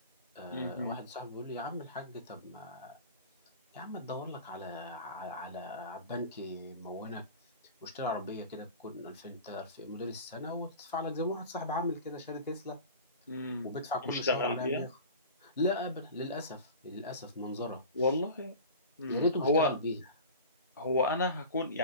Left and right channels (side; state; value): both; inverted; correlation -0.35